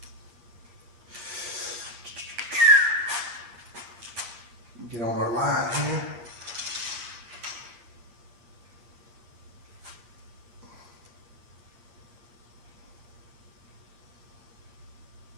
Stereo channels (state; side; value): late; left; 8.6 ms